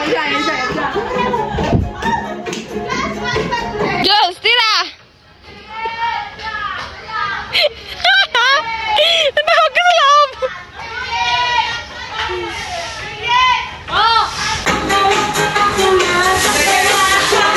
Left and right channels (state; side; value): identical; both; correlation 1.00